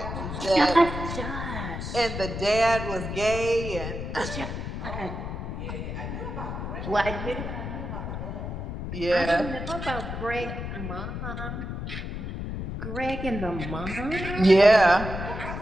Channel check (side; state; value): left; noise; rumble, 6 dB below the sound